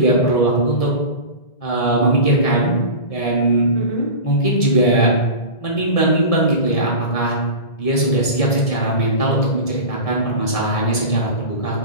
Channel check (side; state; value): right; late; 1.7 ms